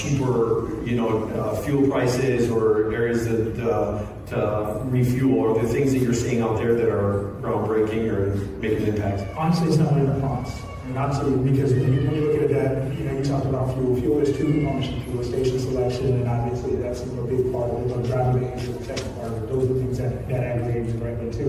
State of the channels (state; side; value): identical; both; correlation 1.00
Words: fuel prices or areas to refuel, or the things that you're seeing out there that are groundbreaking or making an impact? Honestly, it's not really the cost. Because when you look at that, you talked about fuel. Fuel is two components of fuel: station selection, and obviously that's a big part of it. Driving behavior, the second part of it. Those are the things that aggregate directly to